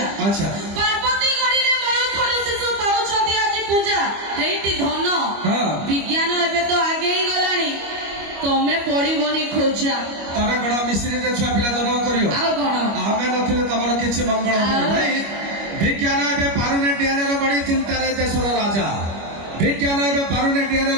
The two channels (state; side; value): late; left; 25 ms